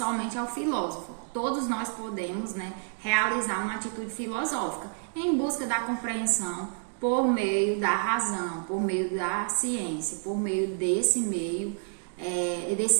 ao filósofo. Todos nós podemos, né, realizar uma atitude filosófica em busca da compreensão por meio da razão, por meio da ciência, por meio desse meio,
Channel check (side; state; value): left; silent; 59 dB below the other